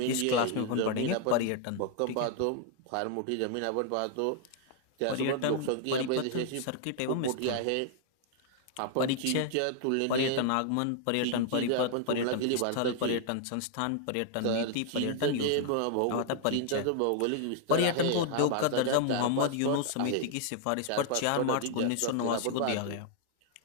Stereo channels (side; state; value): both; different; correlation 0.00